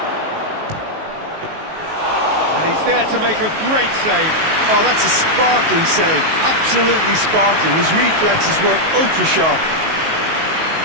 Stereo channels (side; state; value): left; late; 19 ms